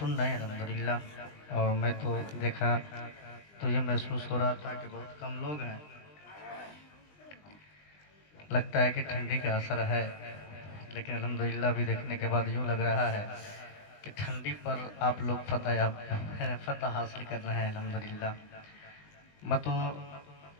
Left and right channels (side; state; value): right; late; 20 ms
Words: रहे हैं अल्हम्दुलिल्लाह। और मैं तो देखा तो ये महसूस हो रहा था कि बहुत कम लोग हैं, लगता है कि ठंडी का असर है, लेकिन अल्हम्दुलिल्लाह भी देखने के बाद यूँ लग रहा है कि ठंडी पर आप लोग फतह हासिल कर रहे हैं अल्हम्दुलिल्लाह।